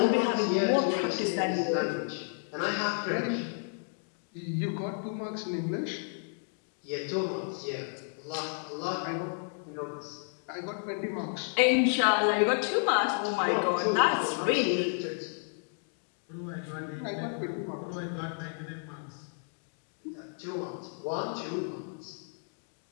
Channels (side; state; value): right; silent; 57 dB below the other